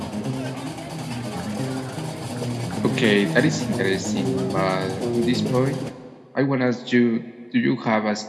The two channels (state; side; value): identical; both; correlation 1.00